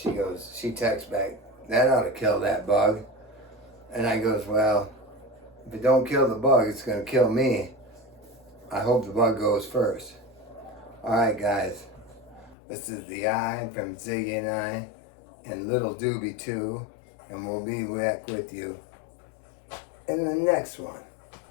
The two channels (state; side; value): drops out; right; at 12.6 s